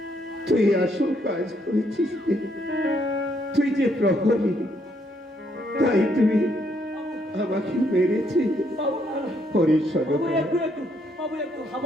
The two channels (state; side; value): normal; both; correlation 0.72